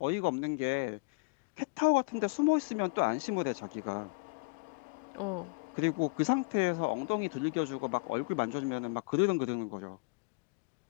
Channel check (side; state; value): right; quieter; 30.6 dB